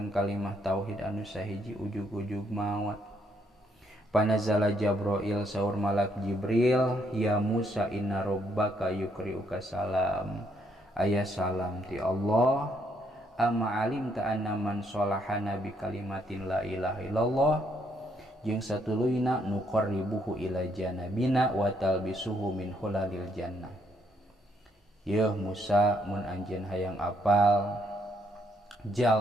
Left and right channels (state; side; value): normal; both; correlation 0.72